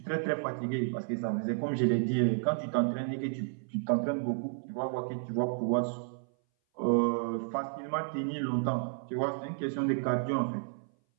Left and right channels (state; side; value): silent; left; 57 dB below the other